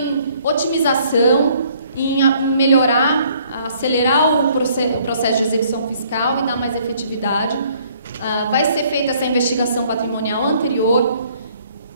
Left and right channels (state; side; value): inverted; both; correlation -0.62